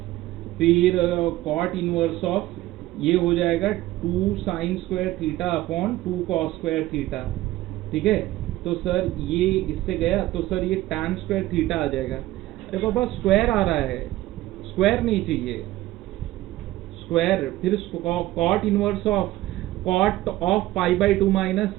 फिर cot इनवर्स ऑफ ये हो जाएगा 2 sign square theta upon 2 cos square theta, ठीक है। तो सर ये इससे गया तो सर ये tan स्क्वायर थीटा आ जाएगा। अरे बाबा स्क्वायर आ रहा है, स्क्वायर नहीं चाहिए, स्क्वायर। फिर cot inverse of cot of pi by 2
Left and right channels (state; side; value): quieter; left; 16.3 dB